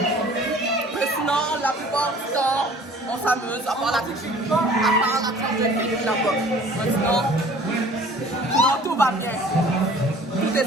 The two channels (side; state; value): both; normal; correlation 0.49